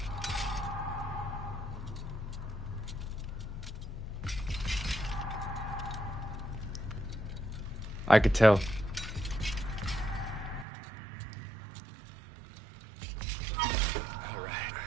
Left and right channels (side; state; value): left; drops out; at 10.7 s